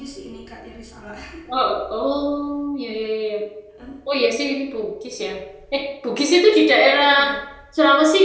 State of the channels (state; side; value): identical; both; correlation 1.00